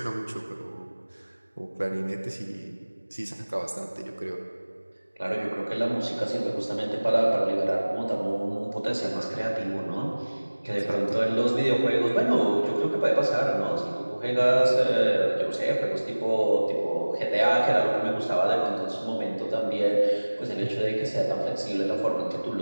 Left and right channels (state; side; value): inverted; both; correlation -1.00